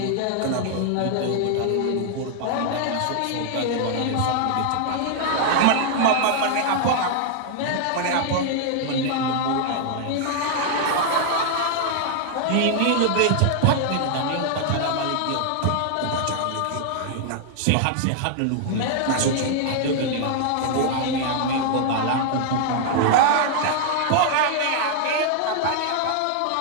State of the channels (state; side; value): different; both; correlation 0.00